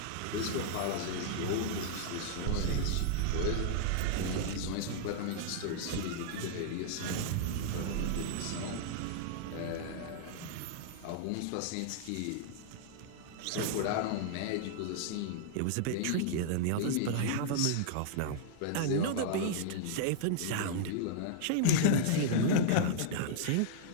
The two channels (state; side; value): different; both; correlation -0.01